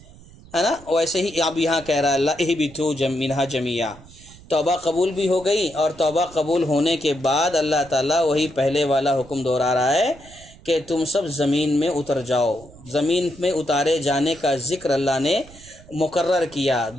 ہے نا، ویسے ہی اب یہاں کہہ رہا ہے اللہ اہبطوا منہا جميعا۔ توبہ قبول بھی ہو گئی اور توبہ قبول ہونے کے بعد اللہ تعالیٰ وہی پہلے والا حکم دہرا رہا ہے کہ تم سب زمین میں اتر جاؤ۔ زمین میں اتارے جانے کا ذکر اللہ نے مقرر کیا،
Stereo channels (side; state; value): right; noise; rumble, 22 dB below the sound